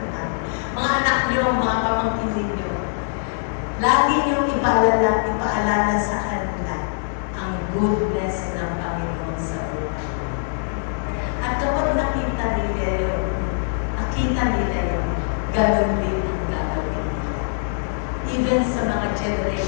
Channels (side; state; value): right; silent; 64 dB below the other